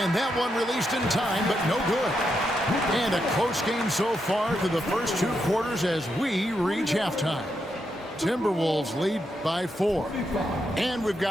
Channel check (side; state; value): both; normal; correlation 0.83